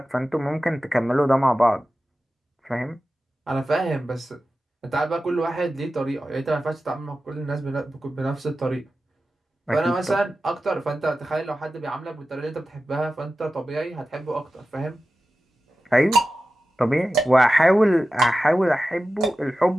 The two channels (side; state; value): both; normal; correlation 0.93